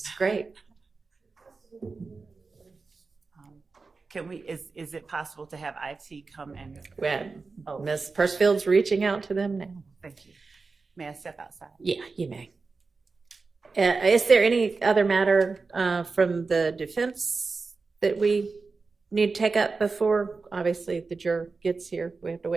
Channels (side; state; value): left; quieter; 4.2 dB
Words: Great. Can we, is it possible to have IT come and, Well, Ms. Pursfield's reaching out to them now. thank you. May I step outside? Yeah, you may. Is there any other matter from the defense that we need to take up before, obviously, the juror gets here? We have to